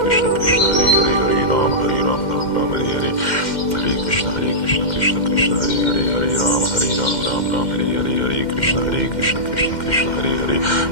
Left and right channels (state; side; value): late; right; 2.1 ms